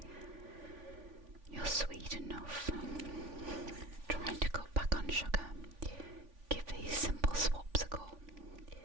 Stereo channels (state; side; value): late; left; 3.5 ms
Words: You're sweet enough. Trying to cut back on sugar. Give these simple swaps a go.